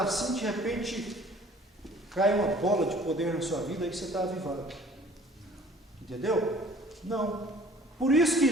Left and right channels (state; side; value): normal; both; correlation 0.52